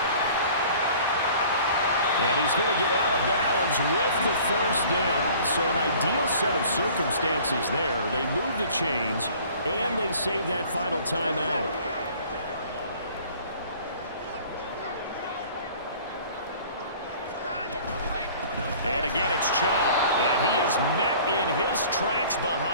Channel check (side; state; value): both; inverted; correlation -0.49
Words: And he's going to get out of bounds with the first down. So an ideal set of circumstances there. They move the chains, and they save that final timeout. And again, it's Chubb. And he is met in his tracks